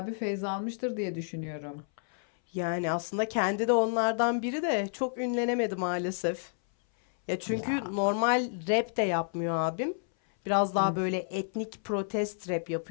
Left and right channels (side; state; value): right; silent; 58 dB below the other